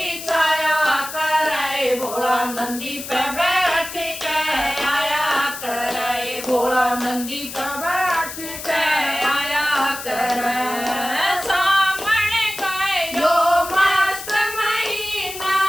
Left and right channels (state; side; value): noise; left; hiss, 10 dB below the sound